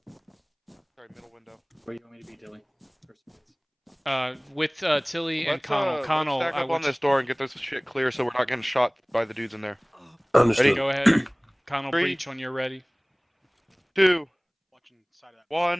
Sorry, middle window. Where you want me to be, Dilly? With Tilly and Let's Connell. Connell, let's stack I up want on this door and get this shit clear so we're not getting shot by the dudes in there. Understood. Ready? Go ahead. Connell, 3, breach when you're ready. 2,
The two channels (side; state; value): both; identical; correlation 1.00